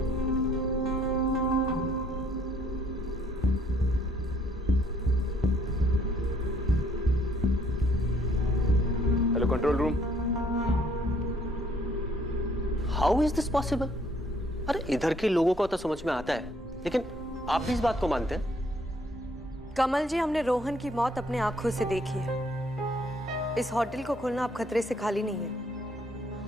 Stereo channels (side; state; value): both; normal; correlation 0.64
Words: Hello control room. How is this possible? अरे इधर के लोगों को तो समझ में आता है, लेकिन आप भी इस बात को मानते हैं? कमल जी, हमने रोहन की मौत अपने आंखों से देखी है। इस होटल को खोलना अब खतरे से खाली नहीं है।